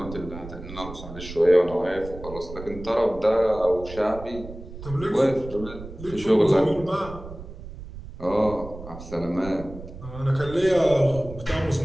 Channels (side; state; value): right; noise; rumble, 13 dB below the sound